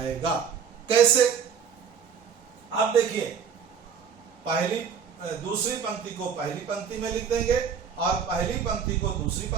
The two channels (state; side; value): quieter; left; 6.9 dB